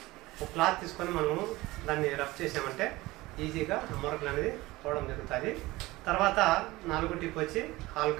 ఒక క్లాత్ తీసుకొని మనము దాన్ని రబ్ చేసామంటే ఈజీగా మరకలు అనేది పోవడం జరుగుతుంది. తర్వాత 4వ టిప్ వచ్చి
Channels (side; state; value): left; quieter; 19.7 dB